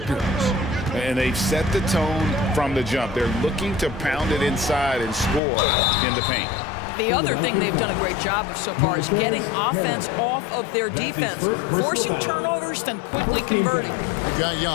And they've set the tone from the jump. They're looking to pound it inside and score in the paint. The other thing they've done a great job of so far is getting offense off of their defense, forcing turnovers, then quickly converting. We got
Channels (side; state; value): right; drops out; at 5.4 s